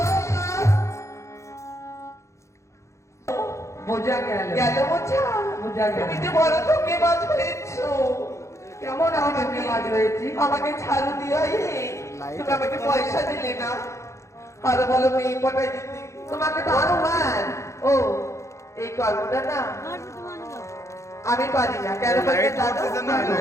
বোঝা গেল গেল বোঝা বোঝা গেল তুমি যে বড় ধোঁকেবাজ হয়েছো। কেমন আমাকে কাজ হয়েছি আমাকে ঝাড়ু দিয়ে তুমি আমাকে পয়সা দিলে না আর বলো মেয়ে পটাই দিতে তোমাকে তো আরো মান ও এই কর্মটা না আমি পারি না কেন বলতে জানো?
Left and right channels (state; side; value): late; right; 0.14 ms